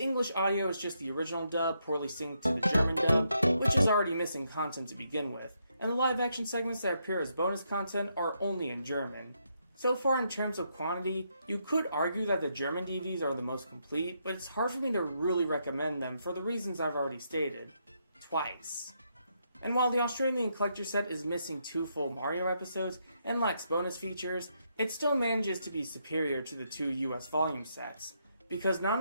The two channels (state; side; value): inverted; both; correlation -0.78